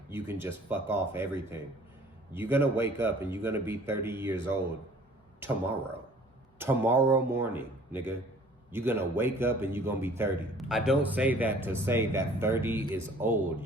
you can just fuck off everything. You're gonna wake up and you're gonna be 30 years old tomorrow. Tomorrow morning, nigga. You're gonna wake up and you're gonna be 30. I don't say that to say that 30 is old,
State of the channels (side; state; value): both; normal; correlation 0.52